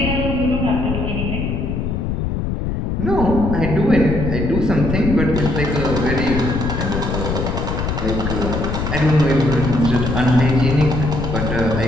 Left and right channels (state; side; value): noise; left; rumble, 2 dB below the sound